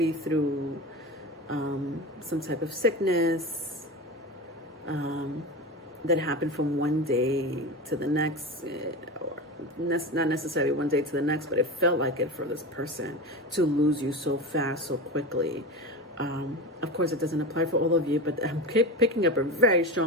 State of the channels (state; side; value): normal; both; correlation 0.25